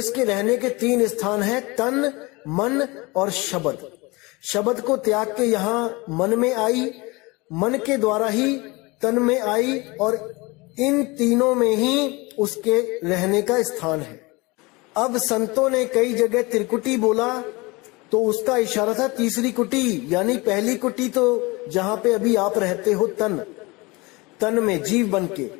रहने के 3 स्थान हैं, तन, मन और शब्द। शब्द को त्याग के यहां मन में आई, मन के द्वारा ही तन में आई और इन तीनों में ही उसके रहने का स्थान है। अब संतों ने कई जगह त्रिकुटी बोला तो उसका इशारा था तीसरी कुटी, यानी पहली कुटी तो जहां पे अभी आप रहते हो तन में जीव बन के।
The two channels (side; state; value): right; quieter; 24.5 dB